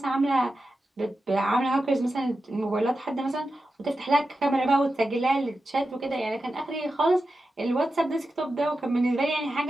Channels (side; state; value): both; normal; correlation 0.91